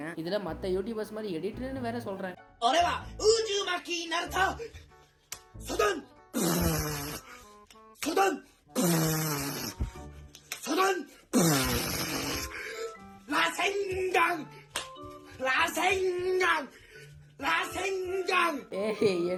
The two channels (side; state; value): both; identical; correlation 1.00